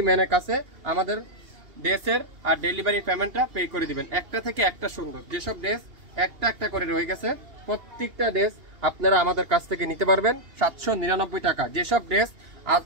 ম্যানের কাছে আমাদের ড্রেসের আর ডেলিভারি পেমেন্টটা পে করে দিবেন। একটা থেকে একটা সুন্দর, যেসব ড্রেস একটা একটা করে রয়ে গেছে প্রত্যেকটা ড্রেস আপনারা আমাদের কাছ থেকে নিতে পারবেন 799 টাকা। যেসব ড্রেস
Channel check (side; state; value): left; late; 2.8 ms